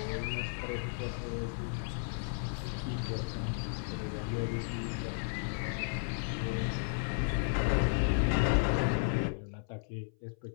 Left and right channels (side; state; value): right; silent; 55 dB below the other